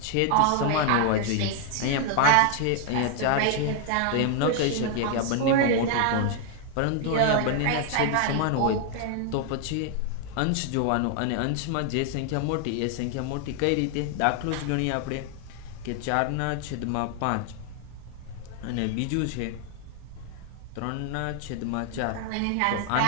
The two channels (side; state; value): both; different; correlation 0.00